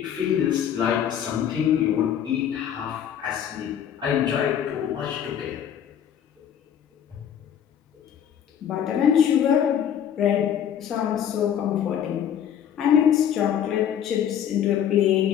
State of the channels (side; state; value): right; quieter; 9.3 dB